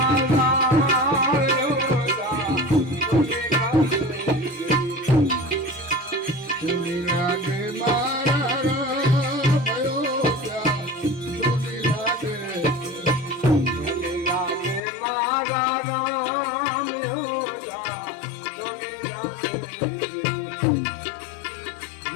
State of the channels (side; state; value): right; drops out; at 14.8 s